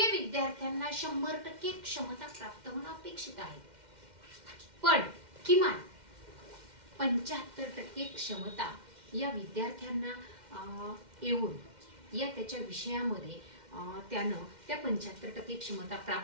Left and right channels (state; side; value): late; left; 2.1 ms